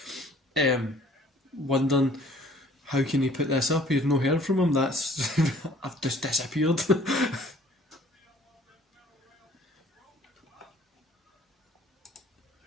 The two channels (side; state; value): both; normal; correlation 0.55